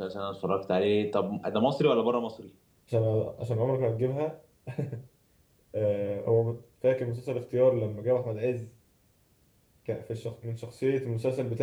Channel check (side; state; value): both; identical; correlation 1.00